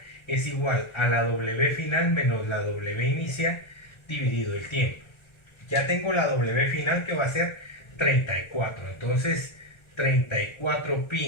es igual a la W final menos la W inicial dividido el tiempo. Ya tengo la W final, que va a ser 34. Entonces 34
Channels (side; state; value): right; late; 1.3 ms